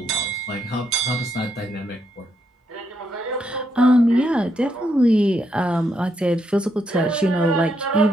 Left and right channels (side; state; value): both; normal; correlation 0.78